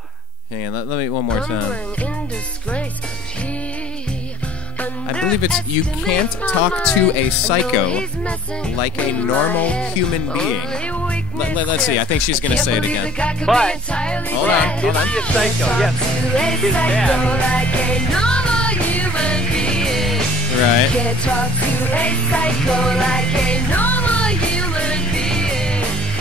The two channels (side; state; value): both; normal; correlation 0.50